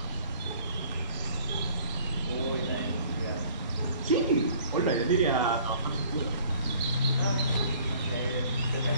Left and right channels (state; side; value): inverted; both; correlation -0.54